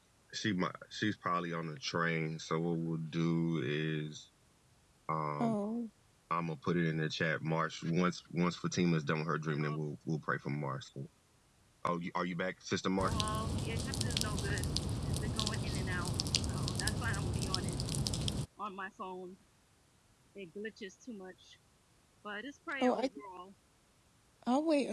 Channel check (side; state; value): both; identical; correlation 1.00